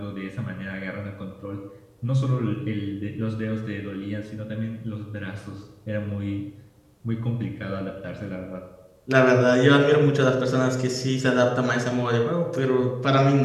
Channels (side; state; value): both; identical; correlation 1.00